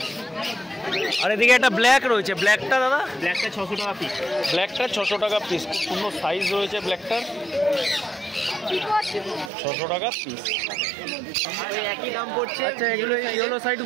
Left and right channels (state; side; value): drops out; left; at 9.5 s